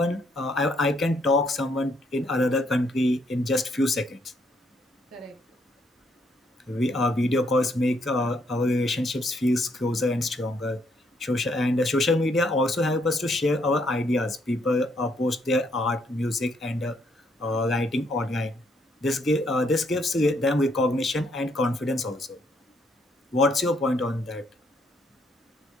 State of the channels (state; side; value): normal; both; correlation 0.72